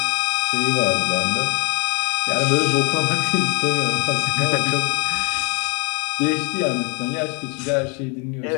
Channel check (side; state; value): right; quieter; 34.2 dB